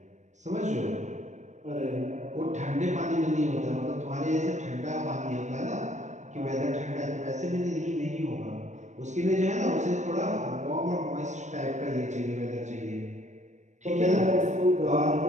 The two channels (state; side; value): late; left; 0.34 ms